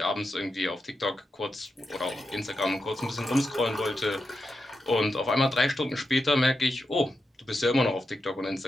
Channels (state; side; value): normal; both; correlation 0.88